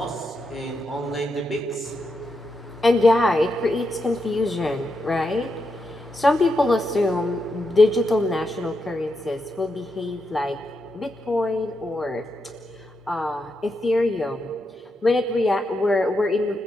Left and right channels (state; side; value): normal; both; correlation 0.84